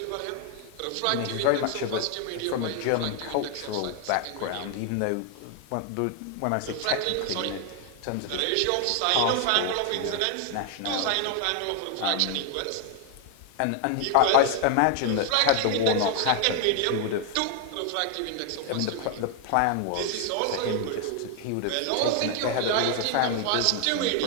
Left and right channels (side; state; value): both; different; correlation 0.00